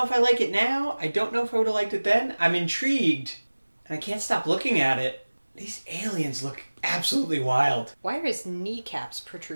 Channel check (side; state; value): both; inverted; correlation -1.00